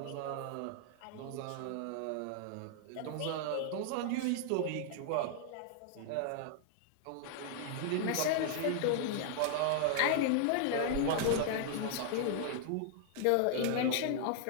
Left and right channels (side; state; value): both; different; correlation -0.01